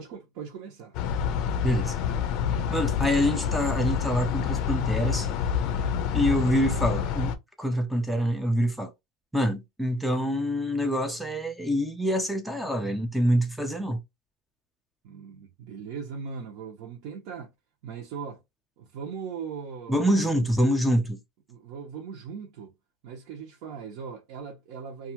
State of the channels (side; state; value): both; normal; correlation 0.62